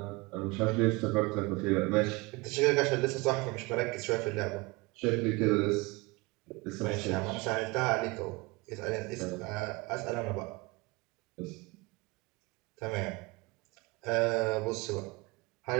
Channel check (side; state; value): left; quieter; 24.6 dB